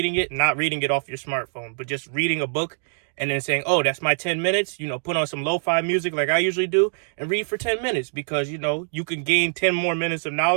it, not reading it off your smartphone, but just reading a book and then saying, oh, that's my 10 minutes. Put on some lo-fi music like I usually do and read for 10 minutes because, you can gain 10 more minutes of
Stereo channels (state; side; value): silent; left; digital silence